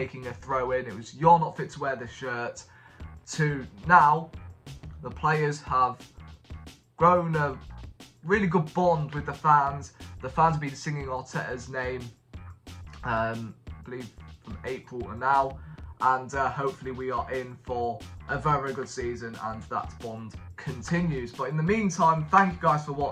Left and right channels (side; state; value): both; identical; correlation 1.00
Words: a throw in. It was you're not fit to wear the shirt, to now the players have grown a really good bond with the fans. The fans have been singing Arteta's name, I believe from April to now, and hopefully we are in for a very, very good season and that bond continues. But in the meantime, thank you guys for